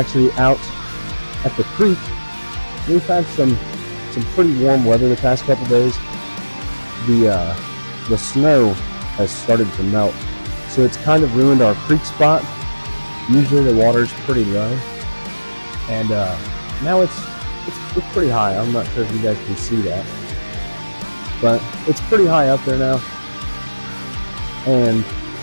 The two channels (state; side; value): inverted; both; correlation -1.00